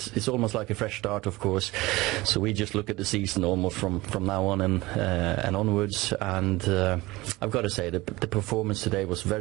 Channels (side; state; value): left; quieter; 20.5 dB